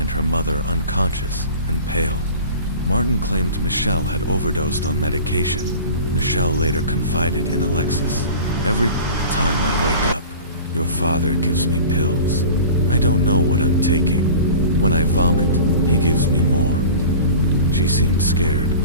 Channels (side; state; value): both; inverted; correlation -0.39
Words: her mother unconscious and pale. Martin claimed Michelle had overdosed on medication. Michelle later confided in Alexis, "Every time I wake up, your father gives me pills. I don't know what I'm taking. When I vomit, he gives me more." She seemed scared,